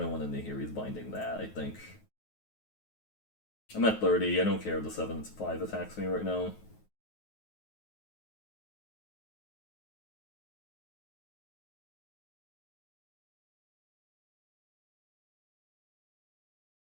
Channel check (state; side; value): late; right; 9.4 ms